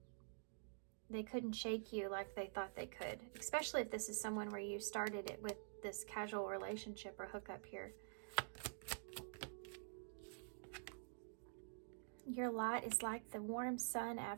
they couldn't shake you like they thought they could. Especially if this is someone where you started it with this casual relationship or hookup here. Your light is like the warm sun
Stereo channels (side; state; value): left; silent; digital silence